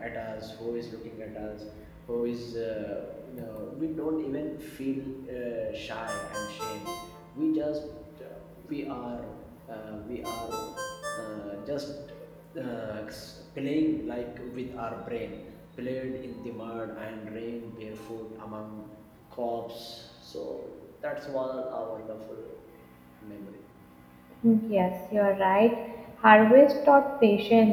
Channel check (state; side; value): identical; both; correlation 1.00